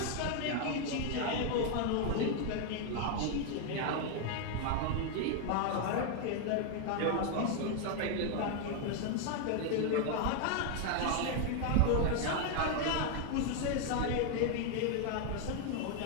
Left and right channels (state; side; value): different; both; correlation 0.01